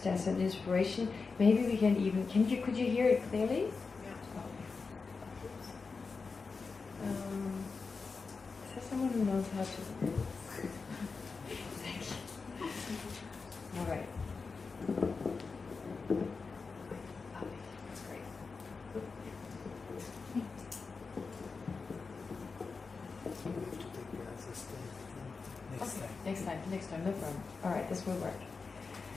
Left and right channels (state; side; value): quieter; right; 4.6 dB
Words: as an inspiration. Maybe we can even, could you hear it clearly? Yeah. Is there someone who knows how to? Thank you. All right. That's great. Next time, no problem. All right, this will work.